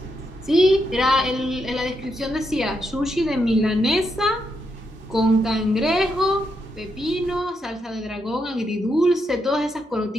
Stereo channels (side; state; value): both; normal; correlation 0.81